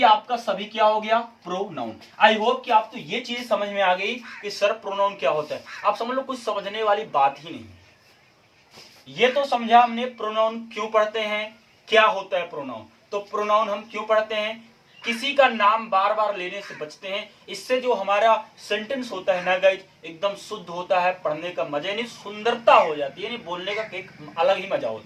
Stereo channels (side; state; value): both; identical; correlation 1.00